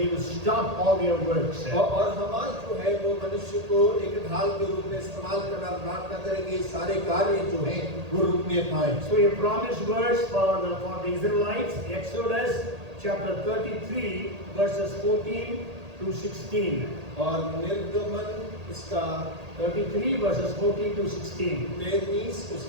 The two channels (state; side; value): late; left; 1.8 ms